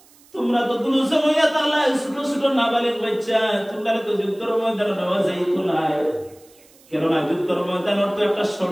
তোমরা তো দুজন হইয়া তাআলা ছোট ছোট নাবালিগ বাচ্চা, তোমরা তো যুদ্ধের ময়দানে নেওয়া যাইতো না। কেননা যুদ্ধের ময়দানের তো একটা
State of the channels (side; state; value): right; noise; hiss, 28 dB below the sound